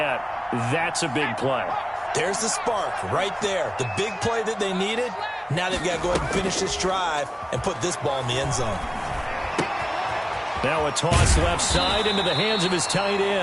that's a big play. There's the spark right there. The big play that they needed. Now they've got to go ahead and finish this drive and put this ball in the end zone. Now a toss left side into the hands of his tight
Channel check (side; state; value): both; identical; correlation 1.00